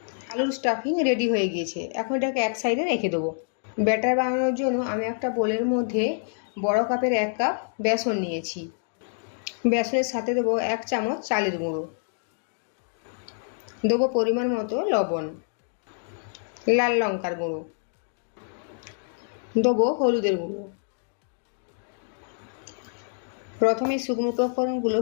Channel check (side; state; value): right; silent; digital silence